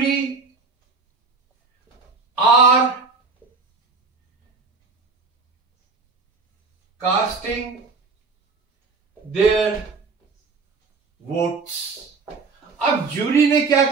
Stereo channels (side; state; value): left; quieter; 4.3 dB